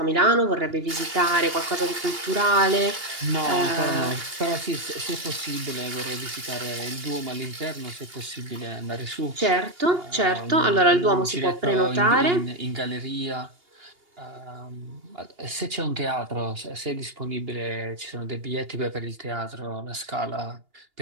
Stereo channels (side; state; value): left; late; 2.8 ms